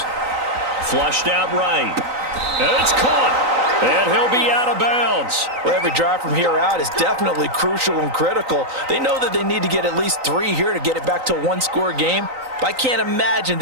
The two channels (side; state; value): left; late; 3.9 ms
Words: Flushed out right. And it's caught. And he'll be out of bounds. Well, every drive from here out is definitely crucial and critical. They know that they need to get at least 3 here to get it back to a one-score game. But I can't imagine